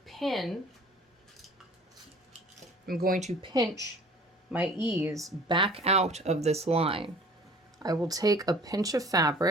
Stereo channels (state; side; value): normal; both; correlation 0.48